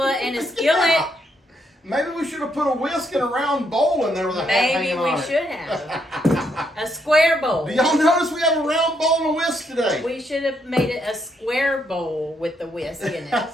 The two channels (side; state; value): both; normal; correlation 0.75